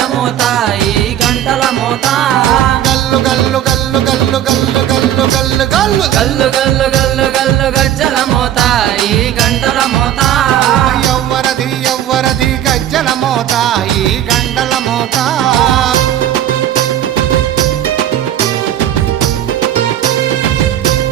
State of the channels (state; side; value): quieter; left; 11.2 dB